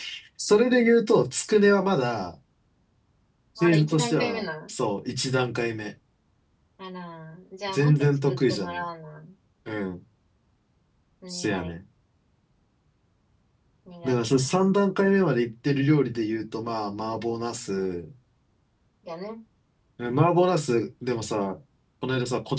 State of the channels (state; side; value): identical; both; correlation 1.00